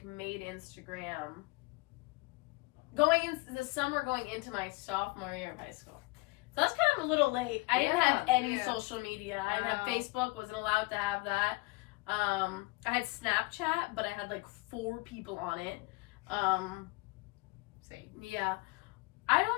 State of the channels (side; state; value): right; quieter; 24.3 dB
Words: going into the summer going into my sophomore year of high school. So that's kind of a little late. I didn't have any social media. I didn't have Facebook, wasn't allowed to have that. I had Snapchat, but I had like 4 people on it. Same. Yeah. I